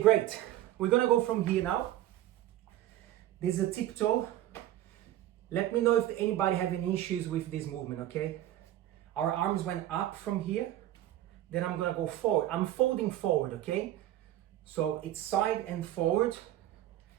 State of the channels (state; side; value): quieter; left; 13.4 dB